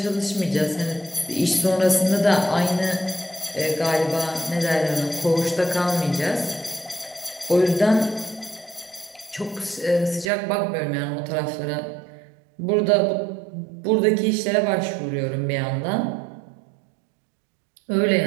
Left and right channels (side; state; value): left; drops out; at 10.3 s